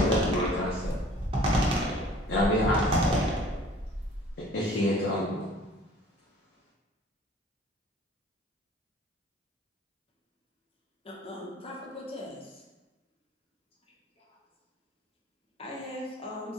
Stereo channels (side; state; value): both; normal; correlation 0.52